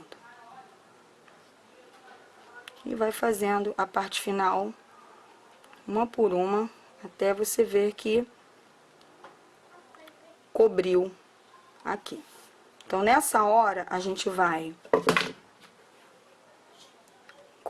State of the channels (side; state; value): both; identical; correlation 1.00